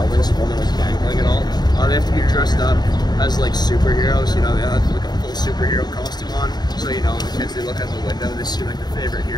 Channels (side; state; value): right; late; 0.20 ms